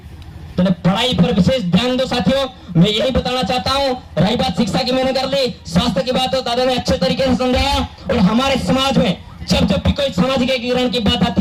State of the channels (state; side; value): identical; both; correlation 1.00